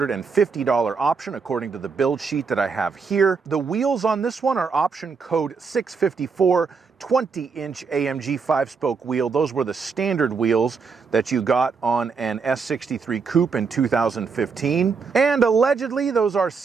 option according to the build sheet that I have here. The wheels on this one are option code 654. 20-inch AMG 5-spoke wheel. Those were the standard wheels that you got on an S63 Coupe in 2015. And allegedly, those are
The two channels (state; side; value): quieter; left; 5.2 dB